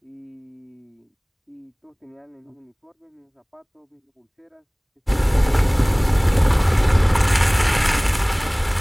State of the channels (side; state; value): both; identical; correlation 1.00